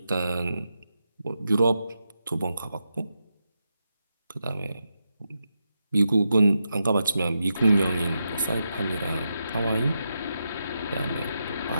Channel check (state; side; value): inverted; both; correlation -0.86